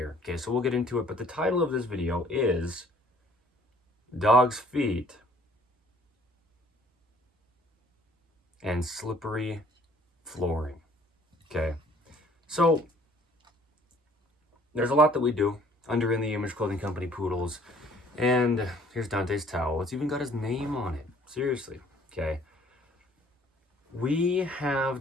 Okay, so we'll get into it, but the title of this video is Dog's Feet and Slippery Flooring. Okay, so there's a lot that we do under In the Image Clothing Company poodles, and here's Dante's towel. It's even got his name on it. Seriously, okay. We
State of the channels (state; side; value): normal; both; correlation 0.57